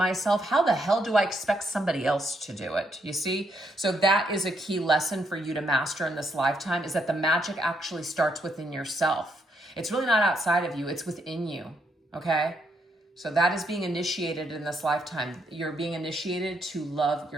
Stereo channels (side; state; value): both; normal; correlation 0.75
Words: how the hell do I expect somebody else to do it? You see? So that is a key lesson for you to master in this lifetime, is that the magic actually starts within yourself. It's really not outside of you. It's within you. Okay? So that is being initiated in this lifetime. You're being initiated to love